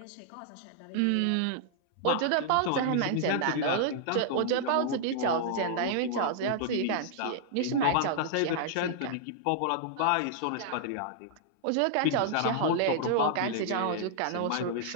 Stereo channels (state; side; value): different; both; correlation -0.01